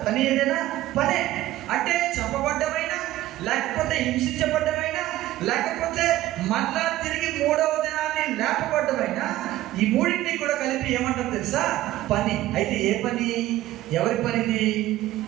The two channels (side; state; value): left; quieter; 15.3 dB